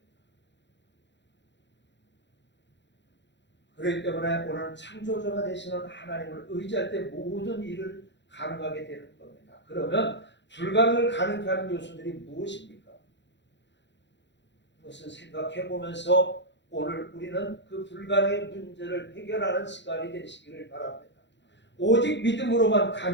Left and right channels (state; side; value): late; right; 0.52 ms